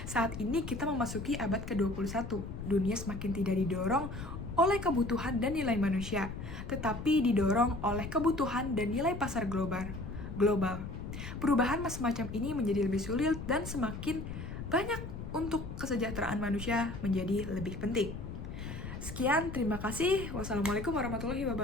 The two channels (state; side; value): noise; left; rumble, 8 dB below the sound